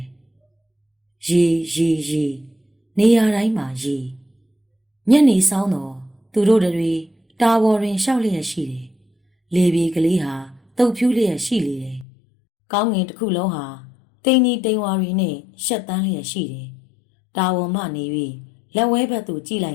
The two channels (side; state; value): right; drops out; at 12.1 s